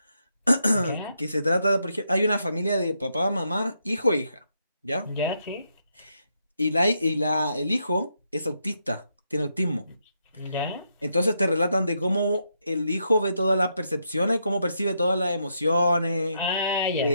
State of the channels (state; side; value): inverted; both; correlation -0.79